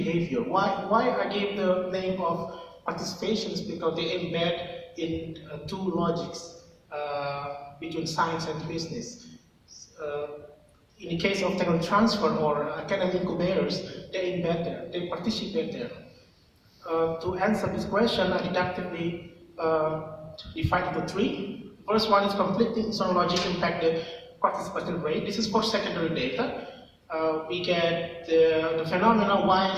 Why I gave the name of participations? Because they embed in two logics between science and business. In the case of technology transfer or academic incubators, they embed there, they participate there. To answer this question, I deductively divide into three. First one is conflicting institutional logic impacted participation rate. This is for secondary data. We get the phenomena why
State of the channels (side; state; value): both; identical; correlation 1.00